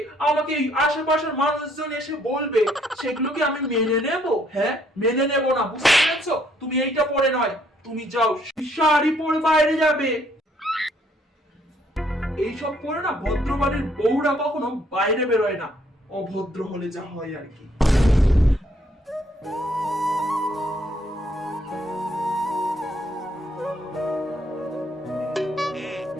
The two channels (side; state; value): both; normal; correlation 0.67